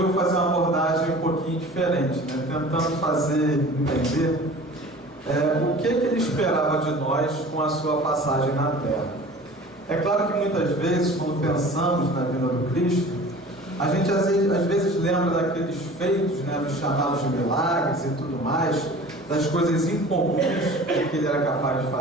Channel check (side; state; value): both; normal; correlation 0.43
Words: fazer uma abordagem um pouquinho diferente, né? Tentando fazer entender o que ele esperava de nós com a sua passagem na Terra. É claro que muitas vezes, quando pensamos na vida do Cristo, a gente às vezes lembra daqueles feitos, né, dos chamados de milagres e tudo mais, das coisas incomuns que ele era capaz de